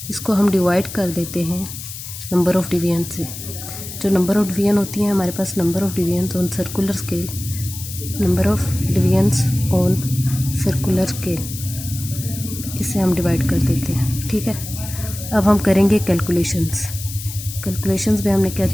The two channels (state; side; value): noise; left; hiss, 10 dB below the sound